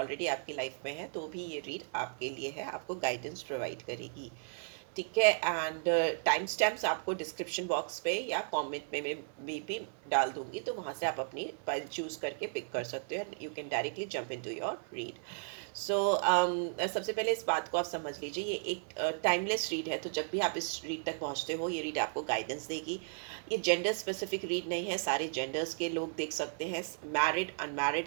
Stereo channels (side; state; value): left; silent; 54 dB below the other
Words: आपकी लाइफ में है, तो भी ये रीड आपके लिए है, आपको गाइडेंस प्रोवाइड करेगी। ठीक है। एंड टाइम स्टैम्प्स आपको डिस्क्रिप्शन बॉक्स पे या कमेंट में भी डाल दूंगी, तो वहाँ से आप अपनी फाइल चूज करके पिक कर सकते हो। You can directly jump into your read. So सबसे पहले इस बात को आप समझ लीजिए, ये एक टाइमलेस रीड है। तो जब भी आप इस रीड तक पहुँचते हो, ये रीड आपको गाइडेंस देगी। ये जेंडर स्पेसिफिक रीड नहीं है, सारे जेंडर्स के लोग देख सकते हैं, married,